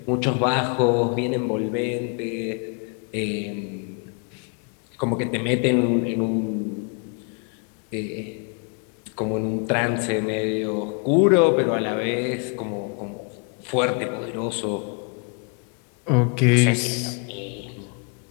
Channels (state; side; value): quieter; right; 37.8 dB